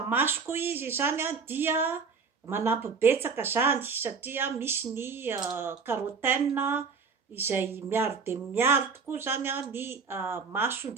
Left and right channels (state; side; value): quieter; left; 5.3 dB